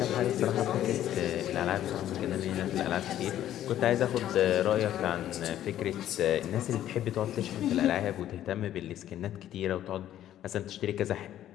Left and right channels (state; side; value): quieter; right; 11.9 dB